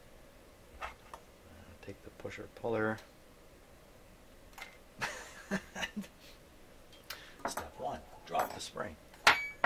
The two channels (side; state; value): both; identical; correlation 1.00